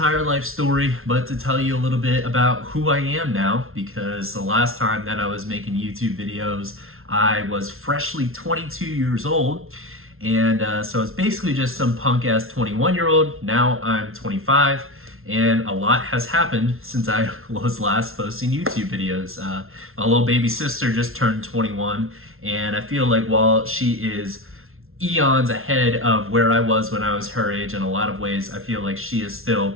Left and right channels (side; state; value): left; late; 0.62 ms